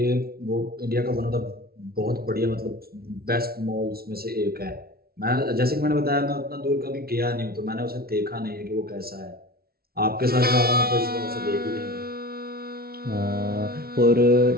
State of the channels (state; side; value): late; left; 0.44 ms